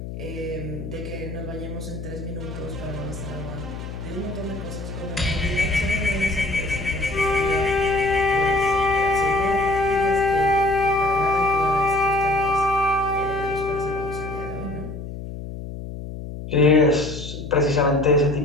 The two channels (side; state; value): left; noise; hum, 9 dB below the sound